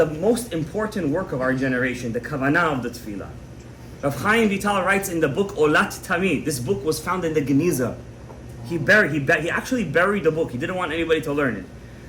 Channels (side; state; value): both; identical; correlation 1.00